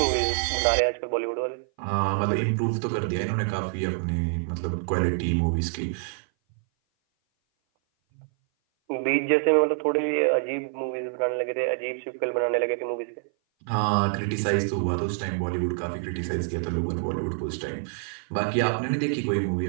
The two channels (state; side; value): silent; left; 57 dB below the other